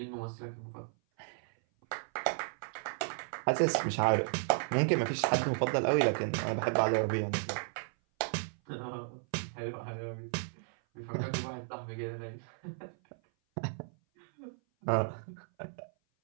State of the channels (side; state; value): left; silent; 55 dB below the other